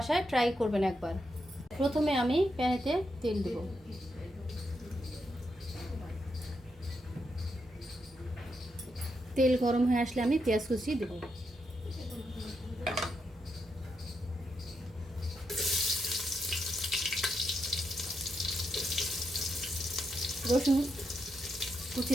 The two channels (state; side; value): normal; both; correlation 0.82